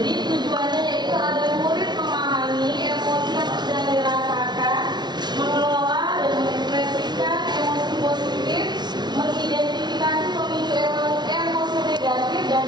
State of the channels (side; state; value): left; late; 0.20 ms